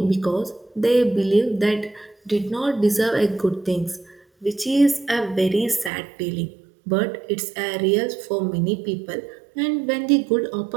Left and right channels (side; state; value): left; drops out; at 5.9 s